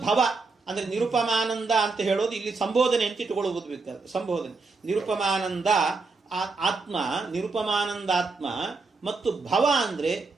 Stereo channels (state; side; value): quieter; left; 4.0 dB